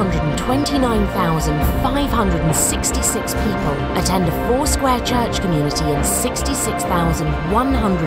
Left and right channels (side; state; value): both; identical; correlation 1.00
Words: people attend a Foursquare church community in